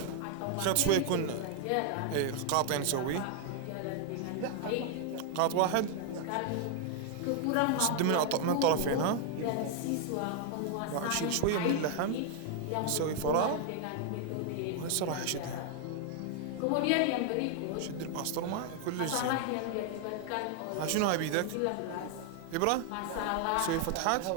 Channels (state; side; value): different; both; correlation 0.00